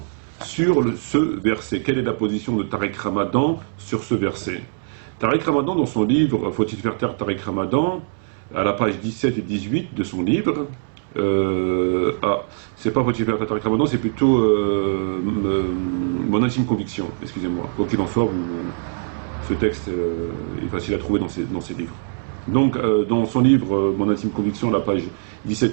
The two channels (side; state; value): left; silent; 64 dB below the other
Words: sur ce verset. Quelle est la position de Tariq Ramadan sur ce verset? Tariq Ramadan, dans son livre Faut-il faire taire Tariq Ramadan, à la page 17 et 18 de son livre, c'est pas Faut-il faire taire Tariq Ramadan, c'est plutôt Mon intime conviction, excusez-moi. Quoi qu'il en soit, ce texte est facile à trouver dans ses livres. Donc, dans son livre Mon intime conviction, à la page